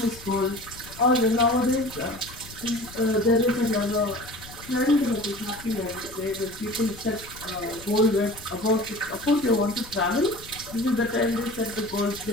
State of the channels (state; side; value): noise; left; rumble, 18 dB below the sound